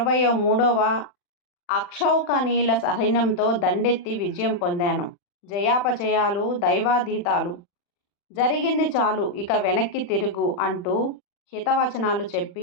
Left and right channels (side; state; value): right; late; 40 ms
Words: అక్షౌకణీల సైన్యంతో దండెత్తి విజయం పొందాను. జయాపజయాలు దైవాధీతాలు. జరిగింది చాలు, ఇక వెనక్కి తిరుగు అంటూ హితవచనాలు